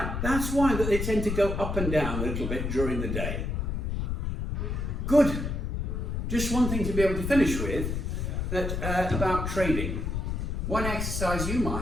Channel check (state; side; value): noise; left; rumble, 2 dB below the sound